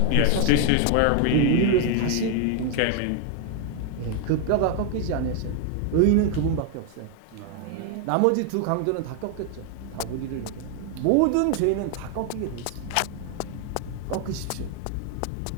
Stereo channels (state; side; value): different; both; correlation 0.00